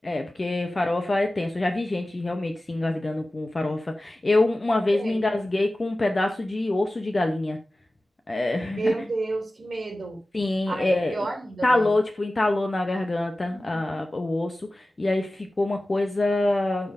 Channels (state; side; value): normal; both; correlation 0.96